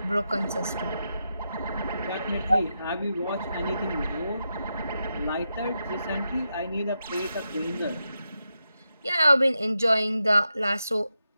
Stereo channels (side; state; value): both; inverted; correlation -0.87